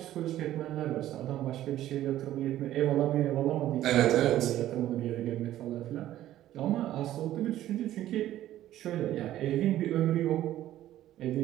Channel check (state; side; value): quieter; left; 13.3 dB